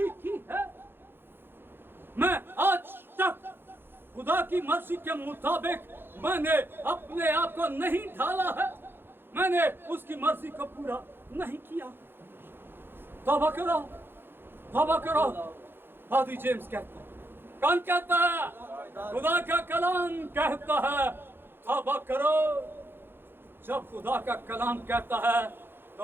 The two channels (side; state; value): left; late; 0.10 ms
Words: की है। मैं आज तक खुदा की मर्जी के मुताबिक मैंने अपने आप को नहीं ढाला है, मैंने उसकी मर्जी को पूरा नहीं किया। तौबा करो, तौबा करो। फादर जेम्स कहता है, कौन कहता है? खुदा का कलाम कहता है तौबा करो। जब खुदा का कलाम कहता है